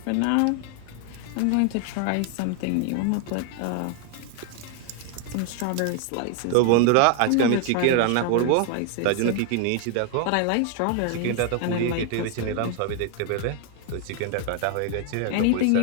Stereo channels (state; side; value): different; both; correlation 0.00